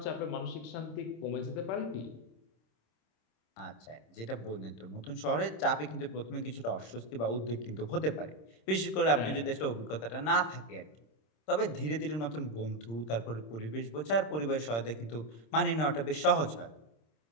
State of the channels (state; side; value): late; right; 26 ms